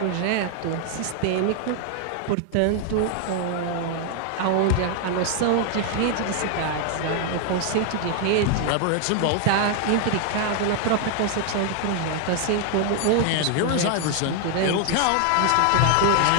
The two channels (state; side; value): different; both; correlation 0.00